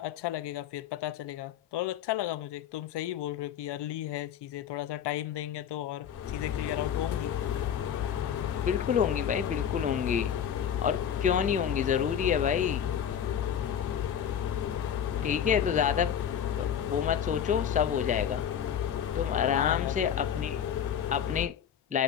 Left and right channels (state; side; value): quieter; right; 8.8 dB